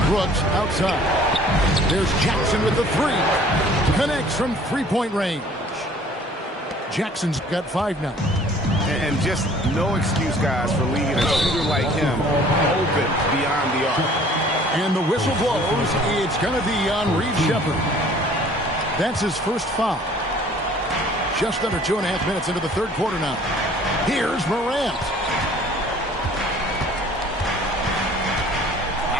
Brooks outside. There's Jackson with the 3. Connects from 3-point range. Jackson's got 5 now. And just no excuse, guys, for leaving a shooter like him open beyond the arc. And the whistle blows. It's going to be on Reed Shepard. That's his first foul. Just under 2.5 minutes into the third quarter now. Here's Morant.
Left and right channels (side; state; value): both; normal; correlation 0.53